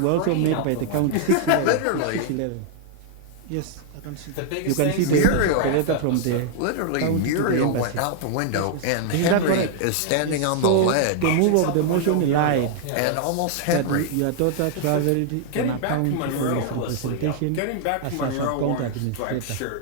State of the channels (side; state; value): both; different; correlation 0.00